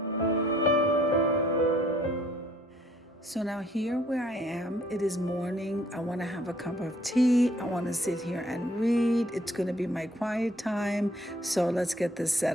So now here where I am, it is morning. I want to have a cup of tea. I want to sit here and read. It's going to be my quiet time. So let's get this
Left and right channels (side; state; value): both; normal; correlation 0.62